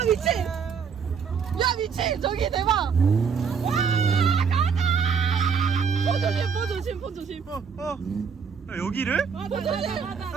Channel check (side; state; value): left; quieter; 6.3 dB